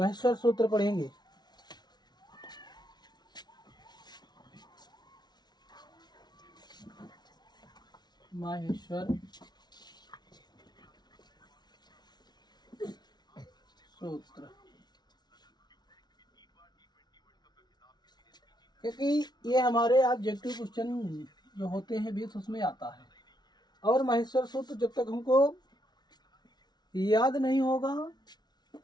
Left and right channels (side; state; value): right; late; 0.20 ms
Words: सूत्र पढ़ेंगे। महेश्वर सूत्र, क्योंकि ये हमारे ऑब्जेक्टिव क्वेश्चन जो होते हैं 20 उसमें आता है। और महेश्वर सूत्र जब तक हमको याद नहीं होगा